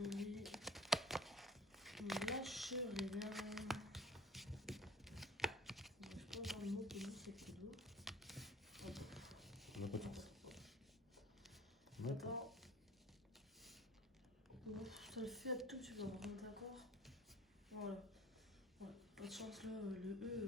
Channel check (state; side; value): normal; both; correlation 0.48